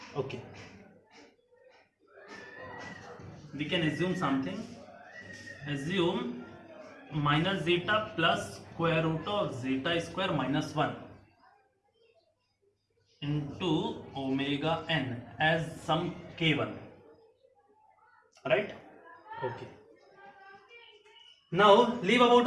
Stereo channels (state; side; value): identical; both; correlation 1.00